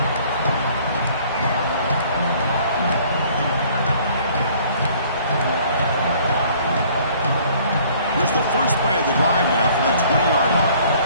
Here's the first play of the drive now from the 20-yard line.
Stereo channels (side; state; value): both; inverted; correlation -0.56